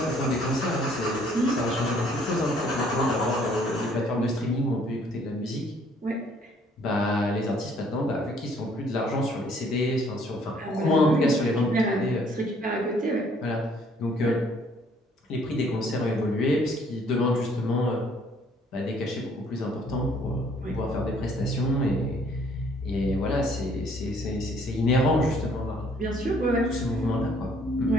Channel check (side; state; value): both; normal; correlation 0.62